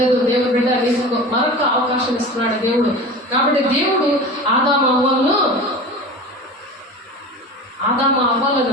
దేవుడు బిడ్డ నీకు మరొక అవకాశం ఇస్తున్నాడు దేవుడు. కాబట్టి దేవుడు ఆదాము అవ్వలను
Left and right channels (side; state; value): both; normal; correlation 0.34